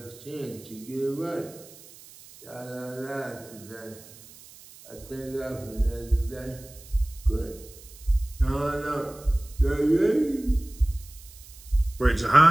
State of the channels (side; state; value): right; noise; hiss, 20 dB below the sound